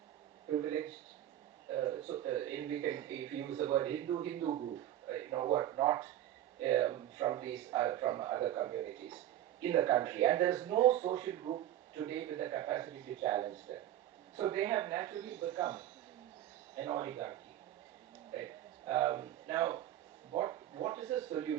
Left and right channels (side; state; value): left; quieter; 12.4 dB